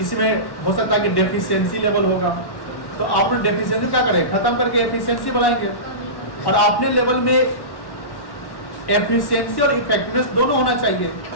में हो सकता है कि डेफिशिएंसी लेवल होगा तो आपने डेफिशिएंसी क्या करें खत्म करके एफिशिएंसी बढ़ाएंगे और अपने लेवल में एफिशिएंसी और इफेक्टिवनेस दोनों होना चाहिए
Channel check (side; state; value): right; late; 1.1 ms